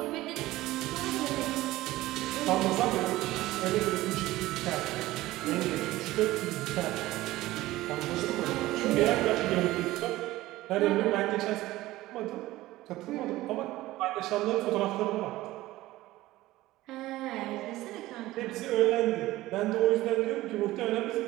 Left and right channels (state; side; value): quieter; left; 17.1 dB